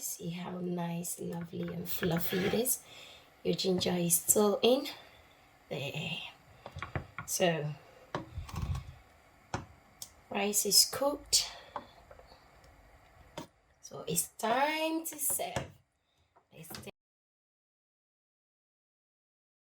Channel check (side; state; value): both; identical; correlation 1.00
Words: See how nice, lovely and fluffy it is. Your ginger is still in there. So rice is cooked, so it's time to serve.